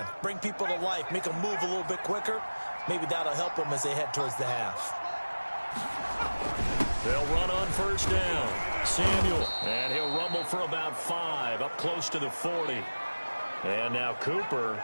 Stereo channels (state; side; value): inverted; both; correlation -1.00